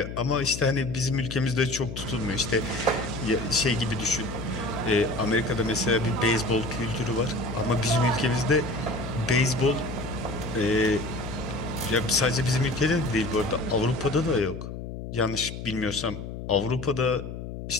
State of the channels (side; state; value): left; noise; hum, 8 dB below the sound